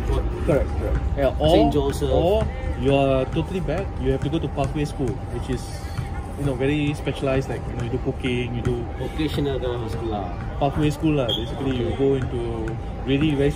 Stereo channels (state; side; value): identical; both; correlation 1.00